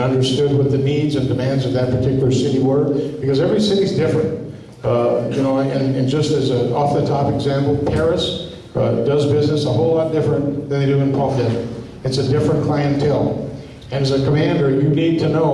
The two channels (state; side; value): identical; both; correlation 1.00